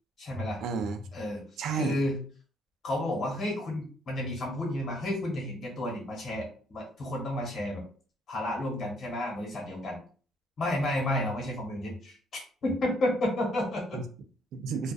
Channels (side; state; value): both; normal; correlation 0.67